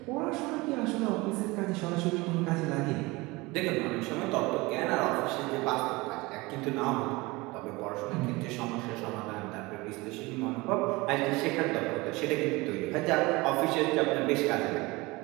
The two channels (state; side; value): quieter; left; 22.9 dB